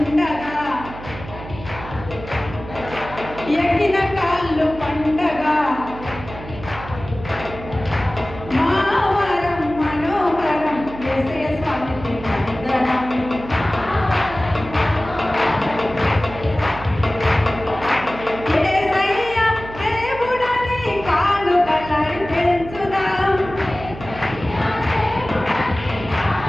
ఎక్కిన కాళ్ళు పండగ, మా వరం మనోహరం యేసయ్య స్వామికి వందనం. యేసయ్య దేవుడని కానుకలర్పించుదాం,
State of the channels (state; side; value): noise; right; hum, 13 dB below the sound